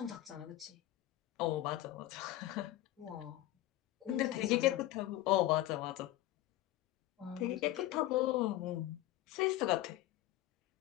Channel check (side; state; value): right; quieter; 15.2 dB